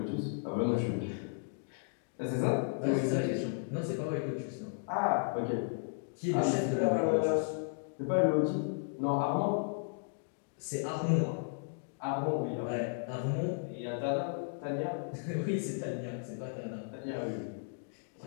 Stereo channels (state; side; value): silent; right; digital silence